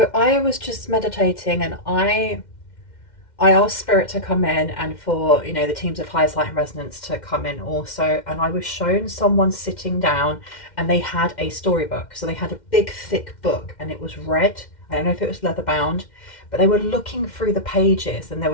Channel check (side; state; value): right; late; 2.1 ms